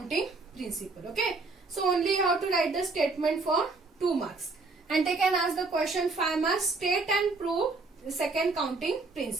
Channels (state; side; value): quieter; left; 3.8 dB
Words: principle. Okay, so only you have to write the statement for 2 marks, and they can ask the question 5 marks. State and prove the second counting